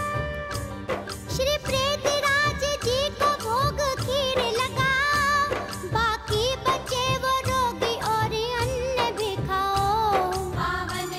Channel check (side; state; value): both; identical; correlation 1.00